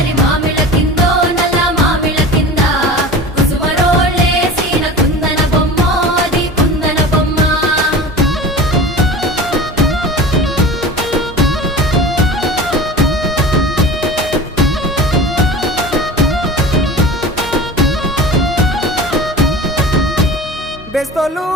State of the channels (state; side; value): normal; both; correlation 0.36